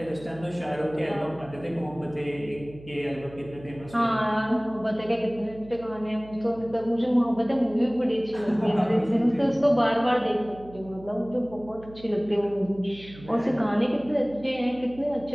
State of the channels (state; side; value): noise; right; hum, 18 dB below the sound